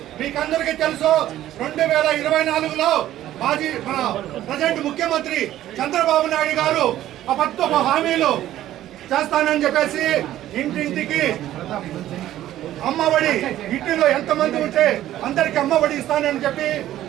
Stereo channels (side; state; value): left; quieter; 13.3 dB